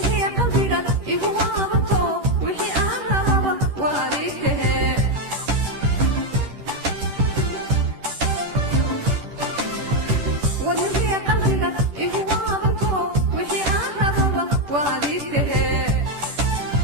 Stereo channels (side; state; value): left; late; 10 ms